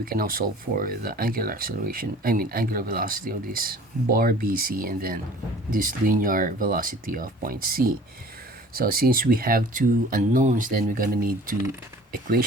can now solve for the angular acceleration, angular velocity of this bar BC, and then this linear velocity of point C. So since we have two unknowns, then we're gonna need two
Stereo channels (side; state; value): both; normal; correlation 0.47